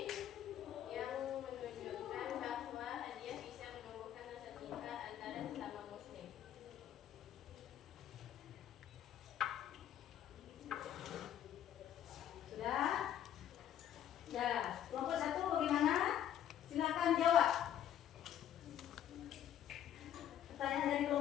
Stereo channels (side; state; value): right; quieter; 10.6 dB